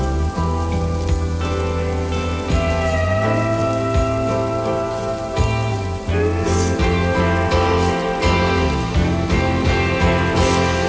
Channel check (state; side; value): identical; both; correlation 1.00